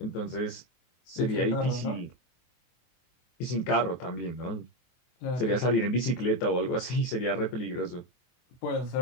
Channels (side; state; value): right; late; 23 ms